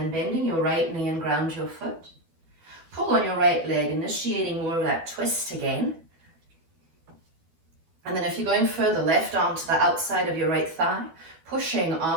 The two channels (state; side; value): late; left; 12 ms